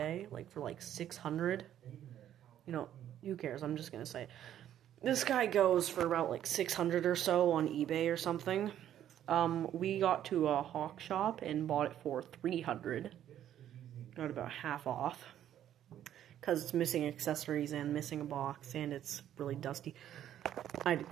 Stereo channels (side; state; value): left; quieter; 11.0 dB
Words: like for like 600. You know, who cares? I'm just gonna say it. This guy goes for about like 600 or so on eBay or something. We got to a hawk shop and bought it for 300. Got about half off. Because it's missing accessories and missing a box and it's really dusty. I had to